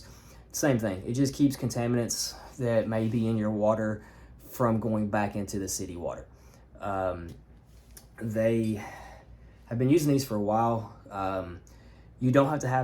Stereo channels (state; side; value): identical; both; correlation 1.00